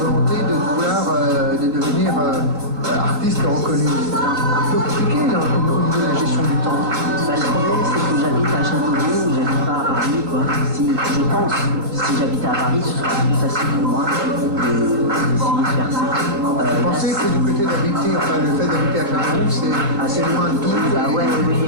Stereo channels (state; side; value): late; left; 3.7 ms